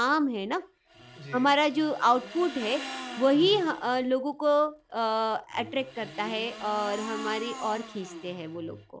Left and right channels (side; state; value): both; identical; correlation 1.00